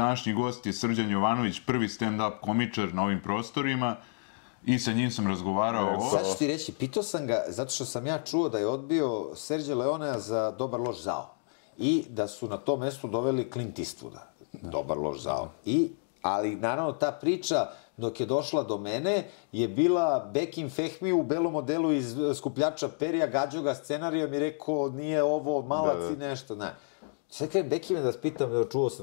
gost je Srđan Jovanović, prvi stand-up komičar na ovim prostorima i sa njim sam razgovarao o... Sad ću ti reći, pitao sam ga, zato što sam ja čuo da je odbio Serđa Leonea za Dobar loš zao i da su na to mesto doveli Clint Eastwooda, Dobar loš zao. Ali naravno ta priča dok je došla do mene je bila Bekim Fehmi u belom modelu iz Skupljača perija, gađao ga scenarijom i rekao nije ovo malac i nešto, ne. Sad kada Bekime da vas pitam, čuo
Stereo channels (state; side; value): silent; right; 58 dB below the other